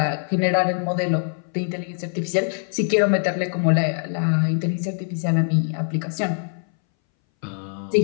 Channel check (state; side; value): silent; right; 61 dB below the other